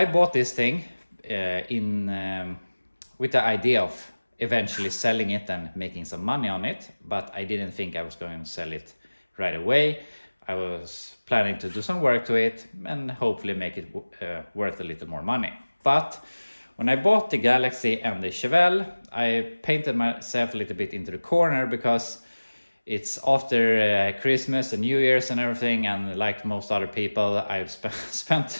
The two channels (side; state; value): both; inverted; correlation -1.00